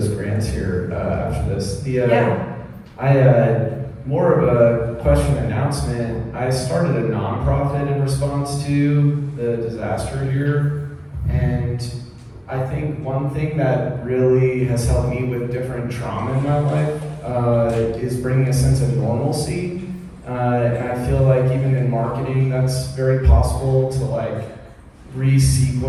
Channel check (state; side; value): identical; both; correlation 1.00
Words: grants here after this. More of a question announcement. I started a nonprofit in response to the disaster here, and I think one thing that really has helped me with different trauma in my life is bringing a sense of normalcy. And I feel like even in marketing, that's very possible to like